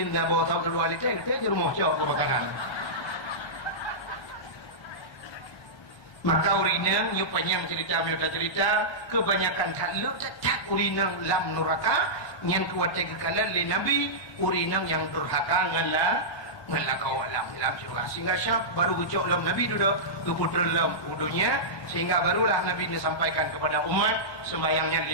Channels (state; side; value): late; right; 1.3 ms